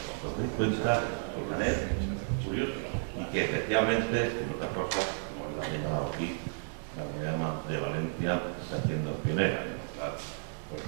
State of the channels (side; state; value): left; silent; digital silence